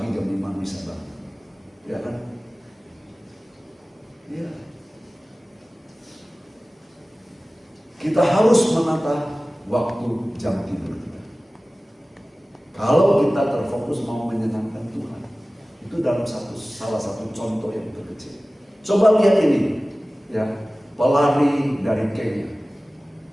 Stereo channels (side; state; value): both; normal; correlation 0.97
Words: jam 5 bisa bangun. Ya kan? Ya. Kita harus menata waktu jam tidur kita. Kalau kita terfokus mau menyenangkan Tuhan, itu dalam salah satu contoh yang terkecil. Coba lihat ini, ya, pelari dari Kenya